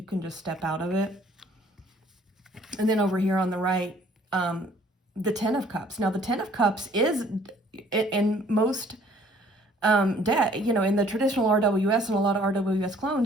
can just step out of it. And then over here on the right, the Ten of Cups. Now, the Ten of Cups is, in most, in the traditional RWS and a lot of RWS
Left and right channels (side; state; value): both; normal; correlation 0.58